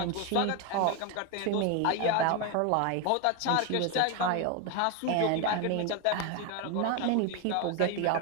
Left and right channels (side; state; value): both; different; correlation 0.02